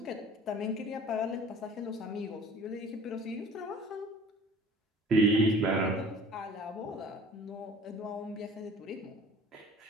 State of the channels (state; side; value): normal; both; correlation 0.47